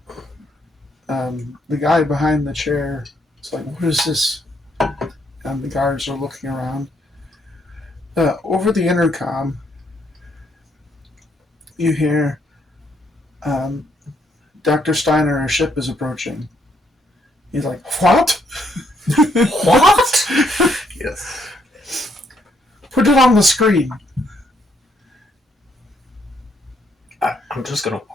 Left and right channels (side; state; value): both; normal; correlation 0.72